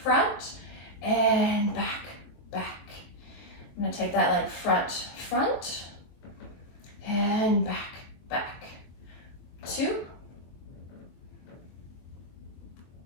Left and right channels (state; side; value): late; right; 23 ms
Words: and back, back. I'm going to take that leg front, front, and back, back. 2.